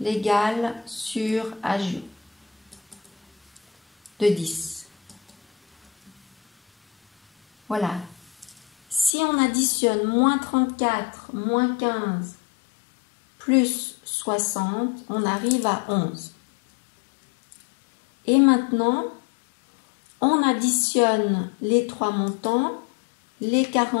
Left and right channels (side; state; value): right; drops out; at 9.1 s